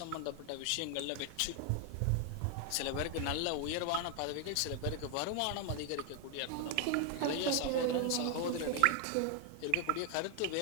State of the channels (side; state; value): both; different; correlation 0.00